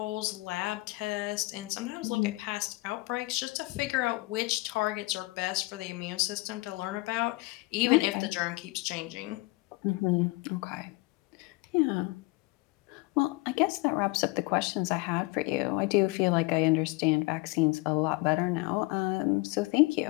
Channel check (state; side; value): quieter; right; 23.6 dB